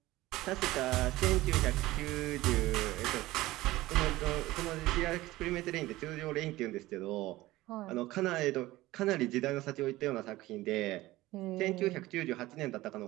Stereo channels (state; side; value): quieter; left; 17.8 dB